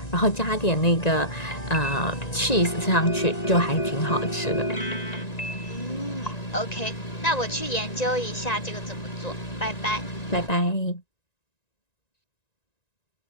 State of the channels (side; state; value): right; late; 1.9 ms